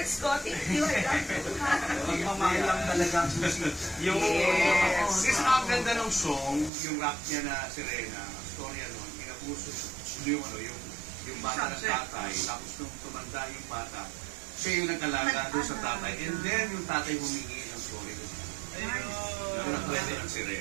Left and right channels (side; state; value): left; drops out; at 6.7 s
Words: ko, thank you. Magmamahal lang talaga ang susi. Yung, Yes. kasi ang ganda ng song, yung rap niya na Serena, ang storya nun, pinapuso yung bata ng tatay, tapos nung tumanda yung bata, siya yung nag-alaga doon sa tatay, and then yung tatay humingi ng sorry doon. Ganun ang kwento ng